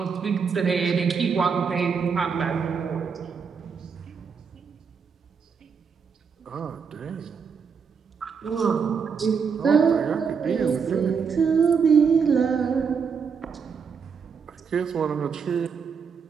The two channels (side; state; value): left; quieter; 6.1 dB